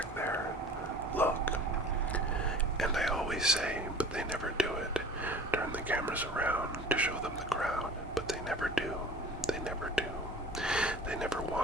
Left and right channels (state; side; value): normal; both; correlation 0.43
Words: there. Look. And I always say, but they never do it. Turn the cameras around to show them the crowd, but they never do. They never do. They never